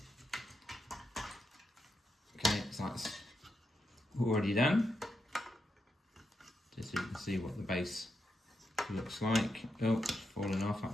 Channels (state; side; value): normal; both; correlation 0.85